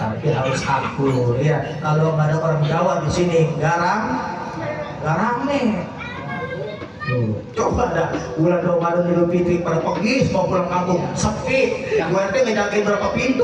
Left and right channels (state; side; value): identical; both; correlation 1.00